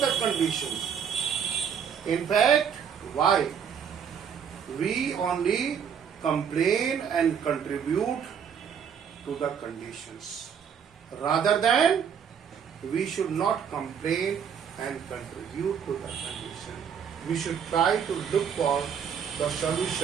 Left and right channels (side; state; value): left; quieter; 7.6 dB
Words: the conditions. In fact, why? We only complain and contribute to the conditions. Rather than, we should not complain and contribute to the condition. We should try to look for the